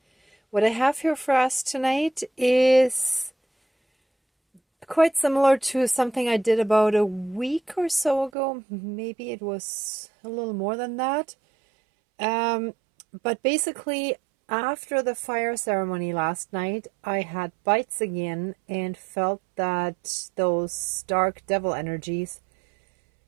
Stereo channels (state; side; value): drops out; left; at 8.3 s